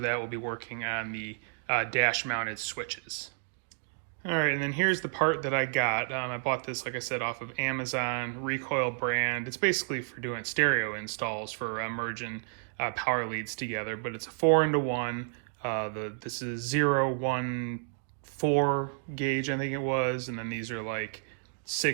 will be working on the dash mounted switches. All right, and then here's the part that I got. I bought this, like I said, off of Amazon, Recoil brand. It's basically for doing stereo installs for merging power leads together, but it's a 4-into-1. This is 0, 1, 4 gauge, I think it was, and then these are like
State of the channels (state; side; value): silent; left; digital silence